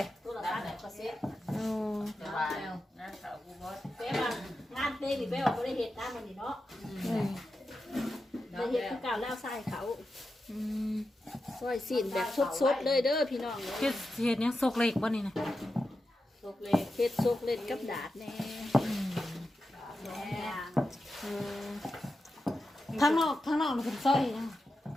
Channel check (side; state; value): both; normal; correlation 0.90